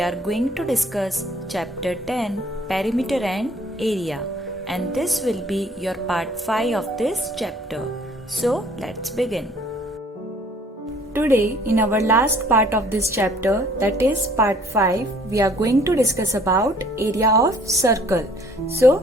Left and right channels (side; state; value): both; normal; correlation 0.57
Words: are going to discuss chapter 10 perimeter and area, and this will be your part 5 of this chapter. So let's begin. Today in our last part of this chapter, that is part 5, we are going to discuss about area of circle. So